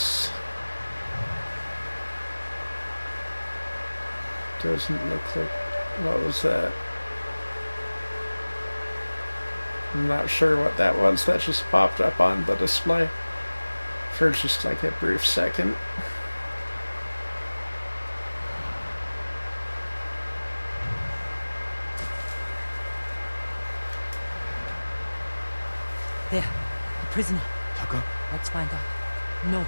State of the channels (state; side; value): inverted; both; correlation -1.00